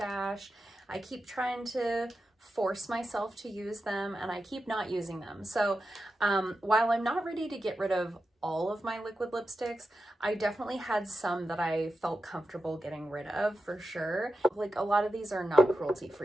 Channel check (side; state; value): both; normal; correlation 0.90